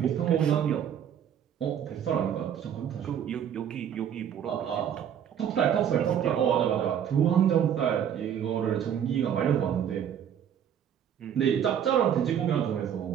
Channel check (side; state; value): left; quieter; 9.1 dB